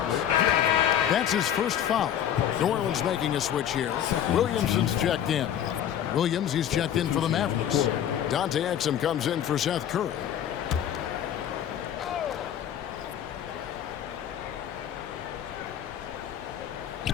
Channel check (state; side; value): quieter; right; 10.0 dB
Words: That's his first foul. New Orleans making a switch here. Williamson's checked in. Williams, he's checked in for the Mavericks. Dante Exum comes in for Seth Curry.